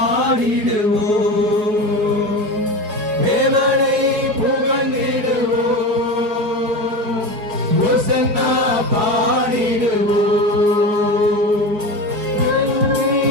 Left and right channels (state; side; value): late; left; 5.0 ms